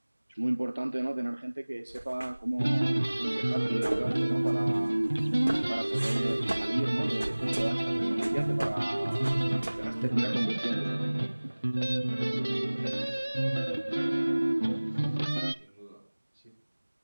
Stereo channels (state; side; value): inverted; both; correlation -1.00